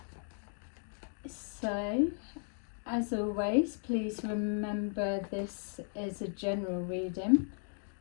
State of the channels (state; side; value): silent; right; 54 dB below the other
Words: So, as always, please remember this is a general reading.